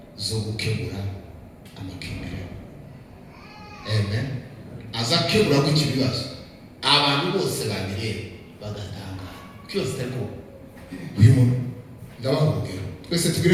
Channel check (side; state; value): both; identical; correlation 1.00